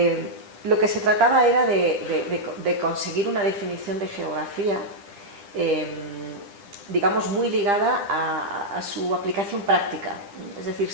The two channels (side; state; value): left; late; 10 ms